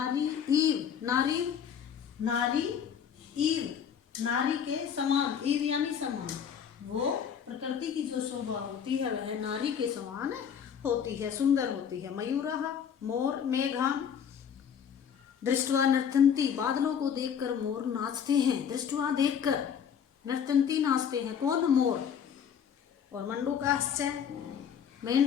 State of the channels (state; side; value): quieter; right; 7.9 dB